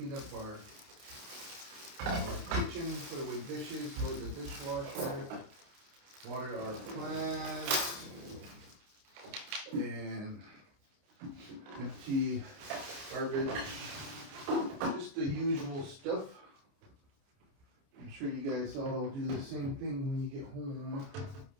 up our kitchen, put away dishes, load the dishwasher, water our plants, and empty garbage. Just the usual stuff. I'm sure you guys all do the same thing when you get home.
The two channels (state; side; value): late; left; 29 ms